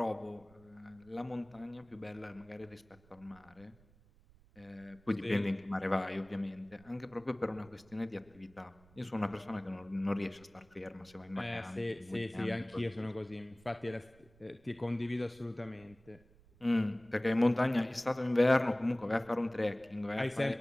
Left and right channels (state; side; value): noise; right; rumble, 27 dB below the sound